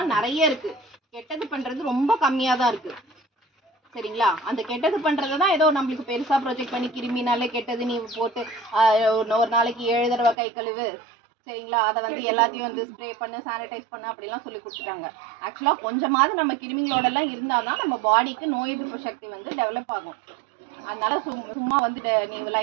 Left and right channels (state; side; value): drops out; left; at 10.4 s